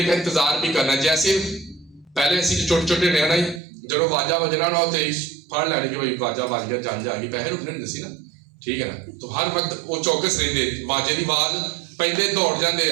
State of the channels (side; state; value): left; drops out; at 3.6 s